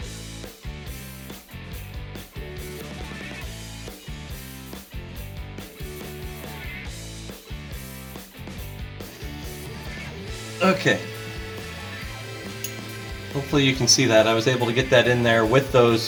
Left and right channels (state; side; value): identical; both; correlation 1.00